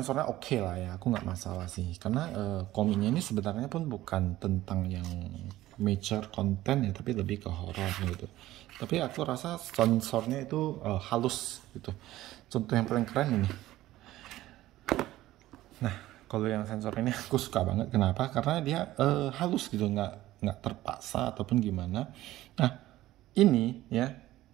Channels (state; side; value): quieter; left; 15.6 dB